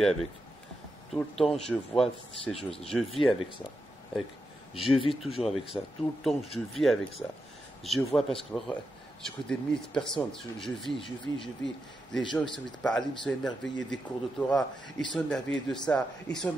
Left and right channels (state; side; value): normal; both; correlation 0.87